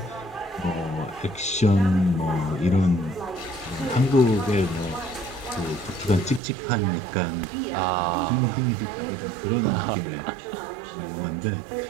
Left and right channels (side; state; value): left; drops out; at 6.4 s